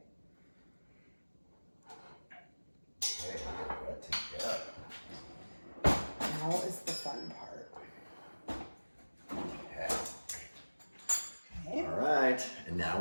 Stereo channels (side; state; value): both; inverted; correlation -1.00